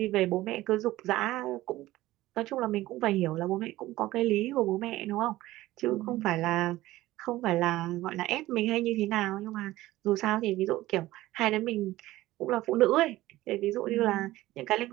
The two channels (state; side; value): quieter; left; 16.8 dB